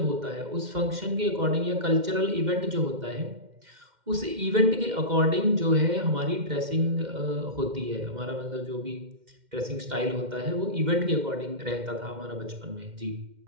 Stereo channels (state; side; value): late; left; 2.1 ms